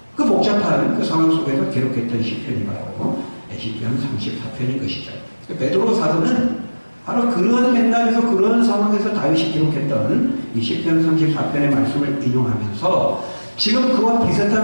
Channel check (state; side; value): inverted; both; correlation -1.00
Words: 그 복잡한 그 상황 속에서 기록했던 시편이 바로 시편 34편인 것이죠. 베드로 사도는 바로 그러한 맥락에서 그러한 상황에서 다윗이 기록했던 이 시편 34편의 말씀을 인용하면서 지금 그와